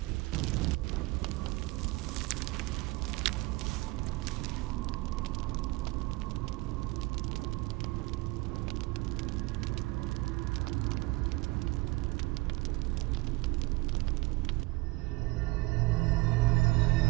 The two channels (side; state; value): left; quieter; 22.2 dB